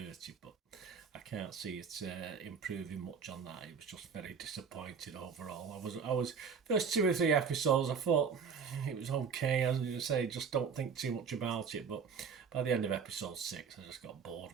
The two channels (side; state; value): left; quieter; 6.2 dB